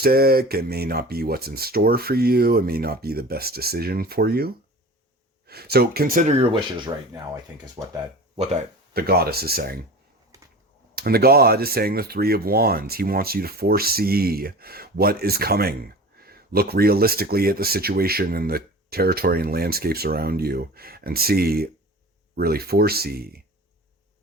It may not be what's in store for you. It may not be the best decision for you. So consider your wishes right now, I think, is what the goddess is saying. And the god is saying the Three of Wands. He wants you to foresee what is coming. Look realistically at the situation and the territory and landscapes around you and really foresee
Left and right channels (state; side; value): normal; both; correlation 0.36